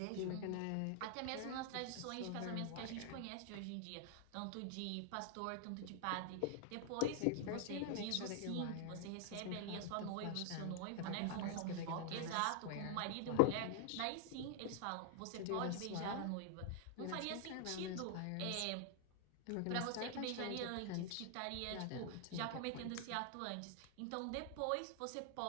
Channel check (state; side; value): different; both; correlation 0.00